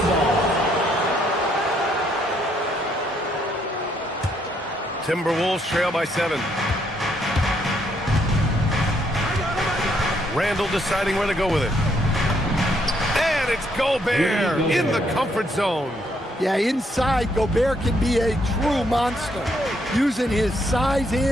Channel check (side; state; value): both; normal; correlation 0.72